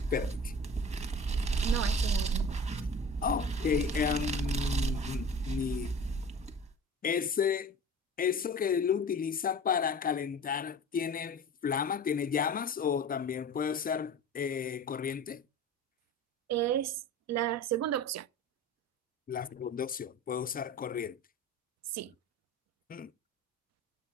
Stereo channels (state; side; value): normal; both; correlation 0.38